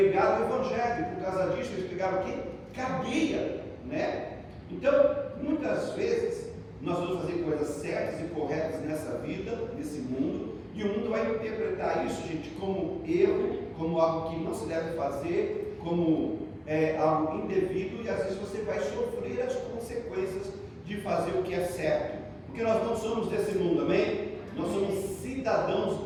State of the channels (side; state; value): both; identical; correlation 1.00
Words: o evangelho. Por causa disso eles pegaram o quê? Cadeia, né? Então, muitas vezes nós vamos fazer coisas certas e corretas nessa vida, nesse mundo, e o mundo vai interpretar isso, gente, como erro, como algo que não se deve fazer, como algo indevido, e às vezes você vai sofrer as consequências de fazer o que é certo, porque nós não somos desse mundo, amém? Nós somos cidadãos